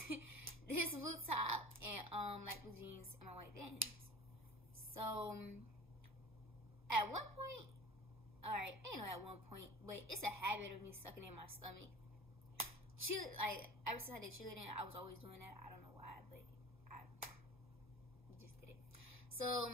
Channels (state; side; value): normal; both; correlation 0.39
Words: this blue top and like blue jeans and my white Vans. So at one point, alright, I ain't know at one point, but it's a habit of me sucking in my stomach. Like ever since I did cheerleading, I was always doing that. I don't know why, but I just did it. So